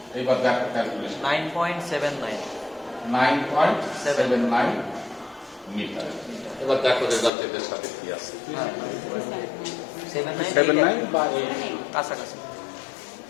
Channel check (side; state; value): right; drops out; at 7.3 s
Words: এবার দেখো ক্যালকুলেশন 9.79 9.79 মিটার এবার দেখো রেজাল্ট এদের সাথে কি আছে 79 বা 8 কাছাকাছি।